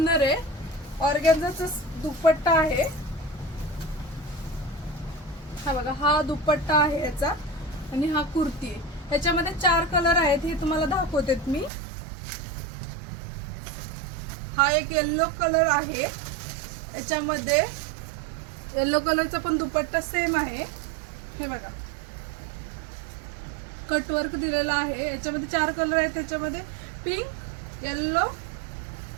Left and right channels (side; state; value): left; drops out; at 11.7 s